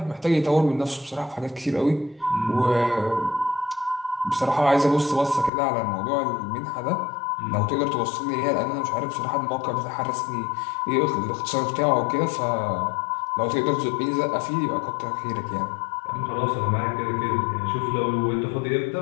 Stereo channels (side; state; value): right; drops out; at 5.5 s